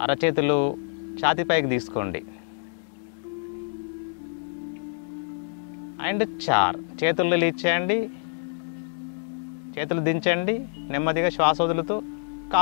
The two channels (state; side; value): silent; right; digital silence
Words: అరచేతులు ఛాతీపైకి తీసుకోండి. అండ్ 4 చేతులు రిలీజ్ చేయండి. చేతులు దించండి. నెమ్మదిగా శ్వాస వదులుతూ